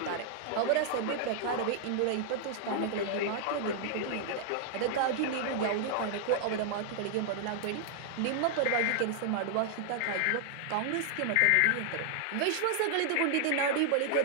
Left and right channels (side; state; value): both; different; correlation 0.00